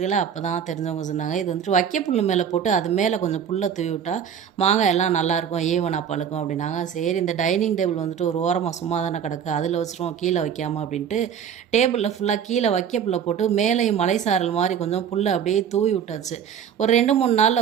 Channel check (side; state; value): left; quieter; 8.2 dB